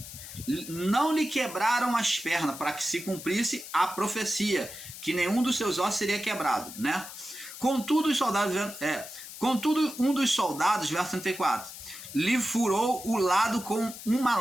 não lhe quebraram as pernas, para que se cumprisse a profecia, que nenhum dos seus ossos seria quebrado, né? Contudo, um dos soldados, verso 34, lhe furou o lado com uma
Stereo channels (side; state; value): left; noise; hiss, 13 dB below the sound